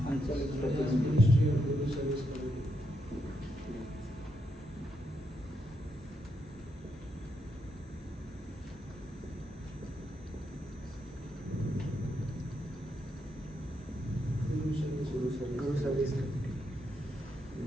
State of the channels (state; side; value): normal; both; correlation 0.80